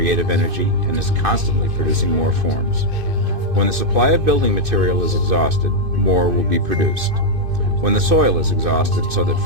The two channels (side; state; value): left; late; 2.5 ms